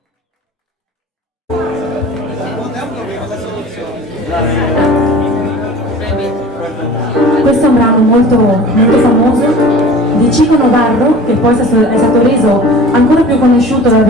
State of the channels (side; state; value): both; normal; correlation 0.42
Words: Questo è un brano molto famoso di Chico Novarro, che poi è stato reso ancora più conosciuto da